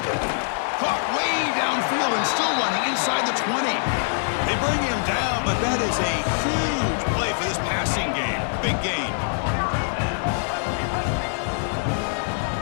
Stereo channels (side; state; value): right; silent; digital silence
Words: Caught way downfield and still running inside the 20. They bring him down, but that is a huge play for this passing game. Big gain.